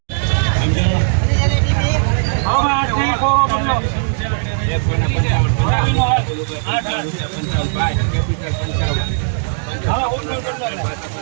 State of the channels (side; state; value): left; silent; digital silence